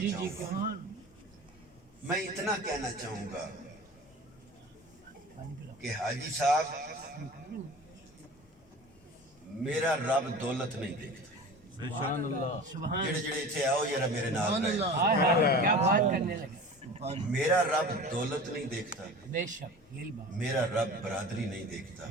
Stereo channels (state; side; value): normal; both; correlation 0.37